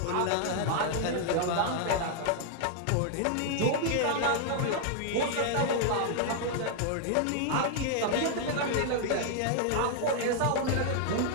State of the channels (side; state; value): both; different; correlation 0.00